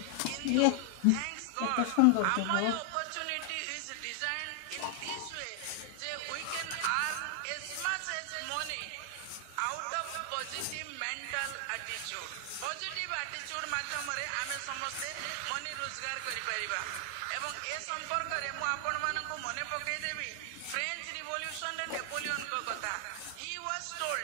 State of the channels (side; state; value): both; different; correlation 0.00